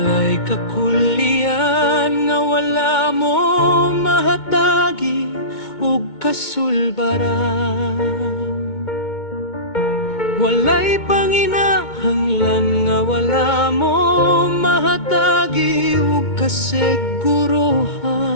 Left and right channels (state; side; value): late; right; 2.2 ms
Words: kakulian nga wala mo mahatagi ug kasulbaran. Walay panginahanglan nga wala mo mahatagi ug kasiguruhan.